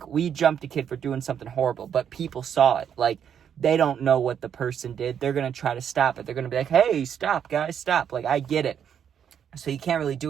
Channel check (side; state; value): left; quieter; 8.4 dB